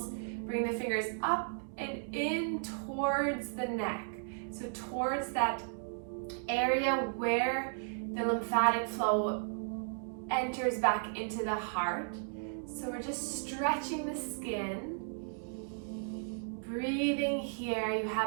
Bring the fingers up and in towards the neck. So towards that area where the lymphatic flow enters back into the heart. So we're just stretching the skin. Breathing here, you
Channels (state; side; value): silent; left; digital silence